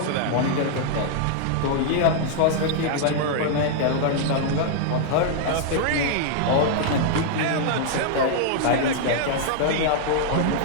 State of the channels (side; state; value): both; different; correlation -0.01